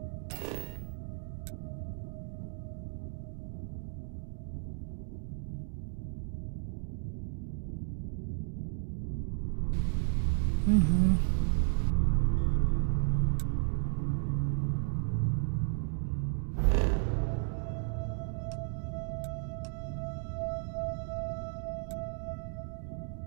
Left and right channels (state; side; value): silent; left; digital silence